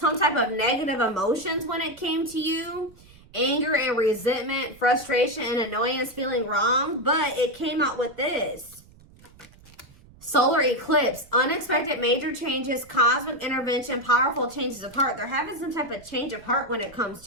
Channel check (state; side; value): noise; right; rumble, 25 dB below the sound